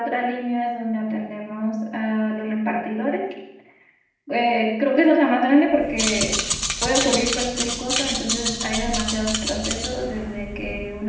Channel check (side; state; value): both; identical; correlation 1.00